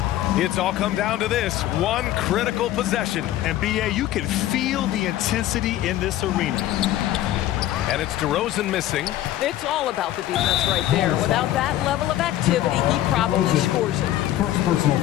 It's all come down to this one critical possession. And B.A., you can feel the intensity in this arena. And it's DeRozan missing. It's all about the defense right there. Without that level of activity, he probably scores it. First personal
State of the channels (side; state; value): right; quieter; 13.6 dB